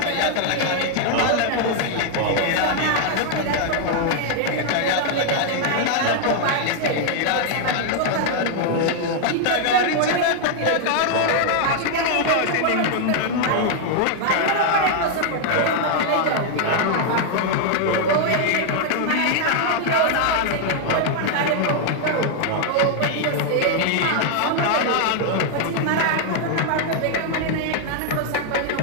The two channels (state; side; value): different; both; correlation 0.00